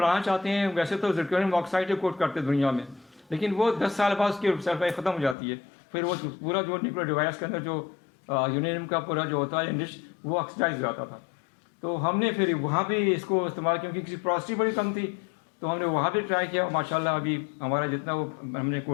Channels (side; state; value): right; drops out; at 5.4 s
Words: चाहते हैं, वैसे तो जिरकोनियम ऑक्साइड कोट करते हैं दुनिया में, लेकिन वो 10 साल बाद उसकी शेल्फ लाइफ ख़त्म हो जाती है। फिर वो पूरा जो न्यूक्लियर डिवाइस के अंदर जो यूरेनियम का पूरा जो होता है इंडिश, वो ऑक्सीडाइज हो जाता था। तो हमने फिर वहाँ भी इसको इस्तेमाल, क्योंकि किसी प्रोसिटी बड़ी कम थी, तो हमने वहाँ भी ट्राई किया। माशाल्लाह अभी हमारा जितना वो हमने